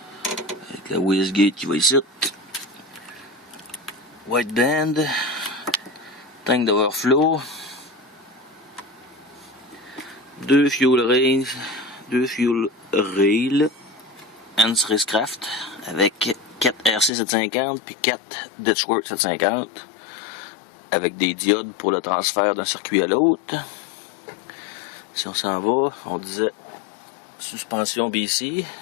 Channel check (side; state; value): right; drops out; at 17.1 s